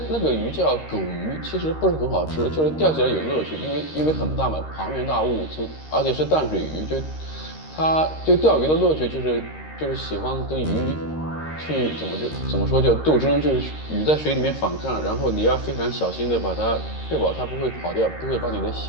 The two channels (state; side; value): late; right; 13 ms